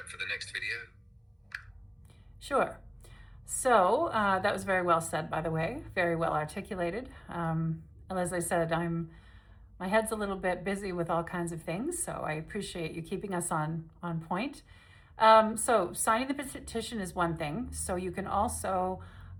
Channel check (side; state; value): both; identical; correlation 1.00